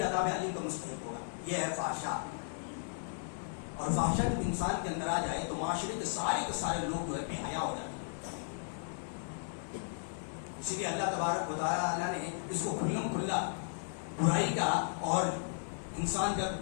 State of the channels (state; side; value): silent; right; digital silence